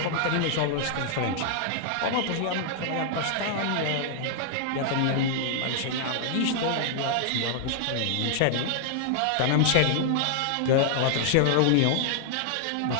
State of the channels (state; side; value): different; both; correlation -0.01